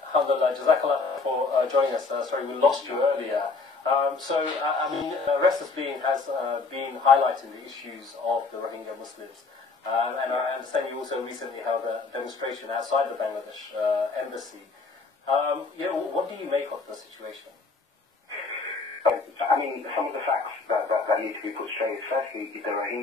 Alhamdulillah, Jazakallah for joining us. Sorry, we lost you earlier. Restless Being has been highlighting the issues of the Rohingya Muslims. And I understand you also recently held a demonstration outside the Bangladesh embassy. What do you make of the situation? I mean, some of the facts that need to be put straight. Firstly, the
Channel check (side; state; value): right; quieter; 4.1 dB